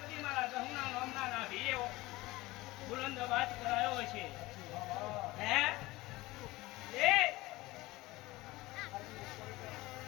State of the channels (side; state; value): right; quieter; 19.8 dB